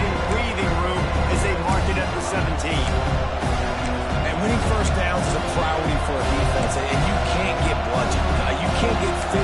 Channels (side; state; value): both; identical; correlation 1.00